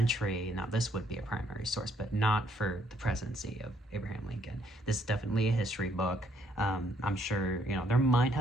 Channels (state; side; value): normal; both; correlation 0.69